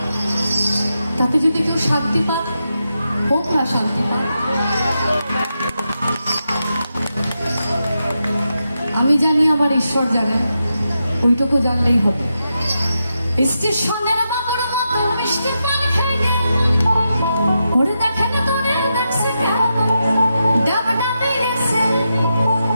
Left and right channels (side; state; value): both; inverted; correlation -0.87